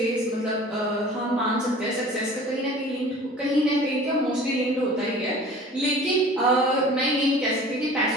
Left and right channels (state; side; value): normal; both; correlation 0.44